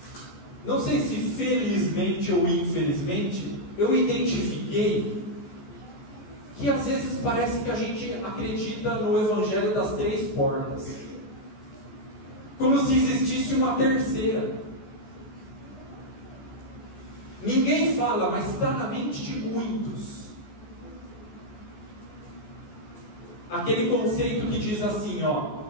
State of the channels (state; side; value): late; right; 14 ms